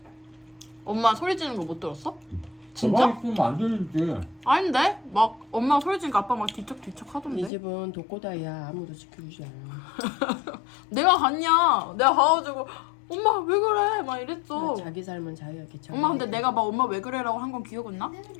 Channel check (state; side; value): drops out; right; at 7.5 s